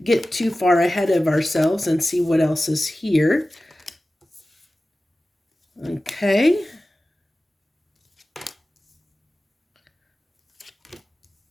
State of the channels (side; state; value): both; normal; correlation 0.96